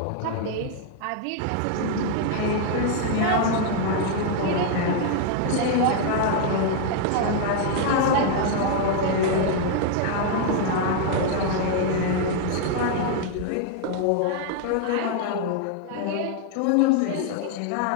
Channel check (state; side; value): different; both; correlation 0.00